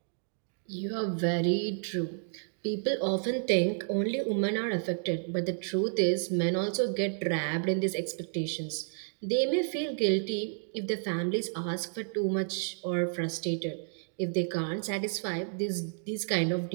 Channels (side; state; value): left; silent; digital silence